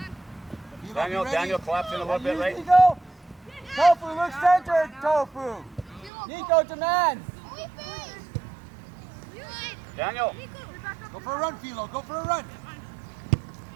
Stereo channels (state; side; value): drops out; left; at 6.1 s